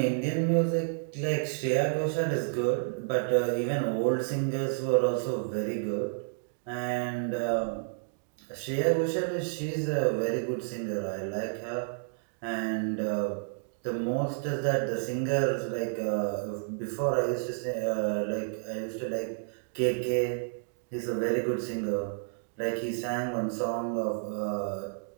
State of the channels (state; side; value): silent; left; digital silence